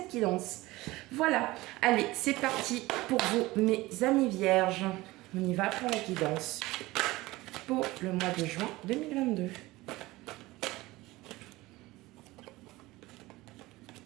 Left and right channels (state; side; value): quieter; left; 19.6 dB